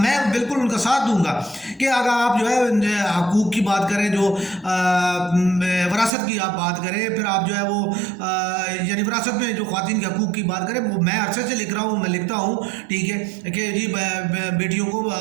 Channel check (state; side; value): drops out; left; at 6.1 s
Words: بالکل ان کا ساتھ دوں گا کہ اگر آپ جو ہے حقوق کی بات کریں, جو وراثت کی آپ بات کریں, پھر آپ جو ہے وہ یعنی وراثت میں جو خواتین کے حقوق کی بات کریں, وہ میں عرصے سے لکھ رہا ہوں, میں لکھتا ہوں, ٹھیک ہے, کہ جی بیٹیوں کو